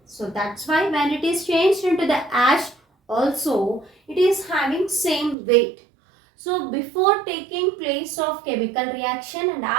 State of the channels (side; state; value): left; drops out; at 5.4 s